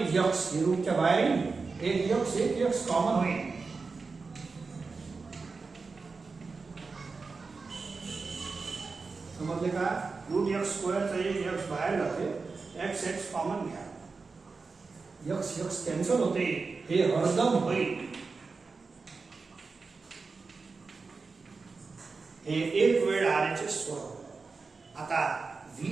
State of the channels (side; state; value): left; quieter; 4.4 dB